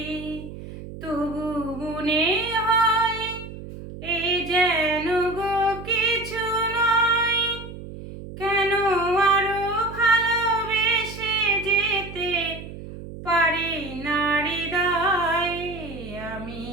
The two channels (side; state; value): right; noise; hum, 12 dB below the sound